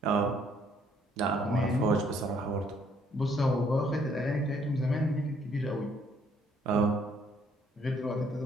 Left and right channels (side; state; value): both; normal; correlation 0.65